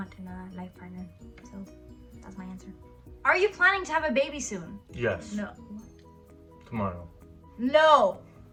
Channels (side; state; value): both; identical; correlation 1.00